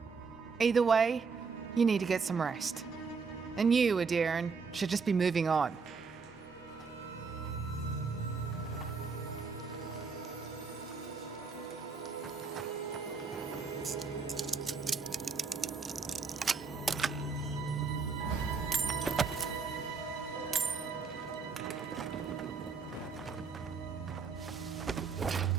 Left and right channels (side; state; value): left; quieter; 5.1 dB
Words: Either way, you need to get some rest. And you, Aedyr, should just be moving on.